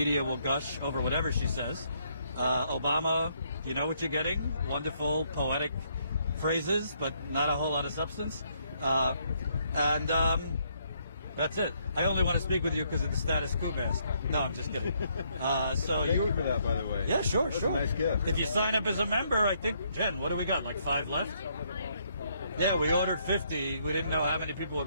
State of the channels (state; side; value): inverted; both; correlation -0.71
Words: will gush over whatever she says. Obama, you know what you're getting. Wonderful, poetic phrases, but not a whole lot of substance. That's it. I only want to speak with you because of the status quo mask. No, I'm just kidding. So Thank you for that, by the way. Yeah, sure, That's sure. a nice gift. If you sign up as a member, I think, Jen, what do we got? Like 5 left? Yeah, we ordered 50. We didn't know how many people